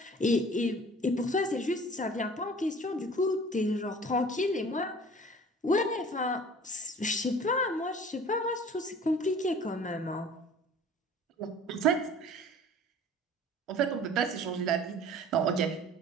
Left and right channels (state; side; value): normal; both; correlation 0.46